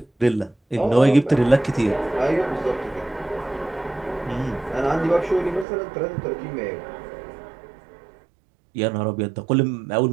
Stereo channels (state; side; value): drops out; left; at 5.7 s